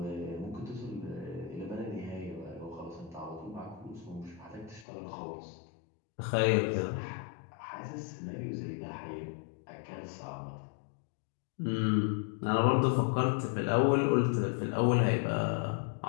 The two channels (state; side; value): drops out; right; at 4.9 s